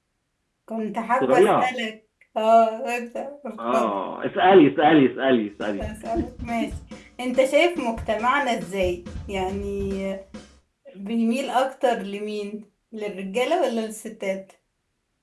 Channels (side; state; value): both; identical; correlation 1.00